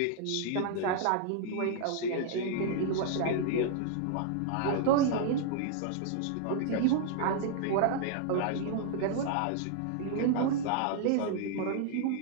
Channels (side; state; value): both; different; correlation -0.01